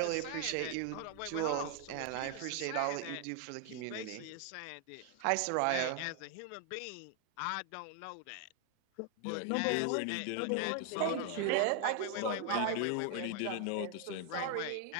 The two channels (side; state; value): both; different; correlation 0.00